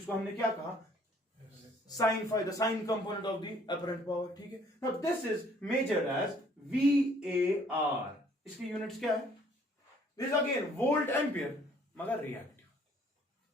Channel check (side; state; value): both; normal; correlation 0.60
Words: हमने क्या कहा? Sine phi, the sine component of the apparent power. ठीक है, now this is measured as VAR। इसकी यूनिट्स क्या है? दिस अगेन वोल्ट एम्पियर मगर रिएक्टिव।